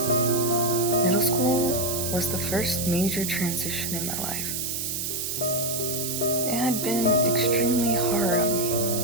Middle school was the first major transition in my life. It had been extremely hard on me,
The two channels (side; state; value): right; noise; hiss, 2 dB below the sound